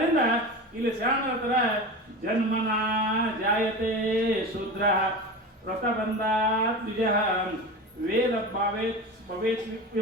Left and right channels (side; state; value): both; normal; correlation 0.28